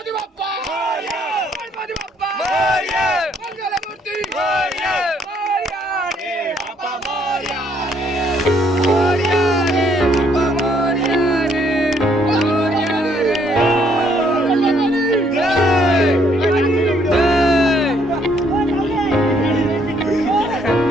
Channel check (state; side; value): normal; both; correlation 0.68